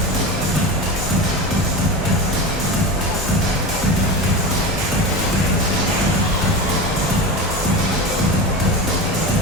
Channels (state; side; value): normal; both; correlation 0.26